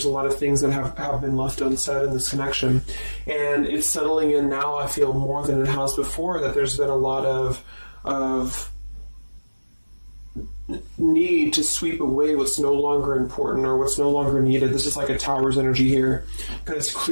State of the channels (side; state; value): both; inverted; correlation -1.00